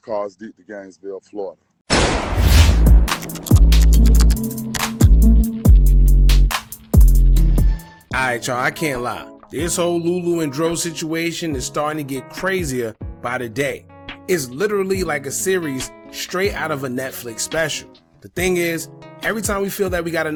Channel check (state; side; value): identical; both; correlation 1.00